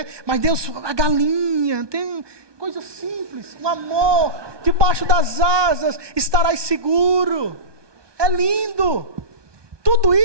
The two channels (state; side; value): late; left; 1.2 ms